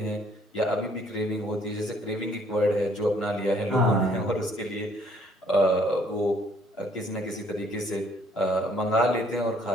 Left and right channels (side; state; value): both; normal; correlation 0.62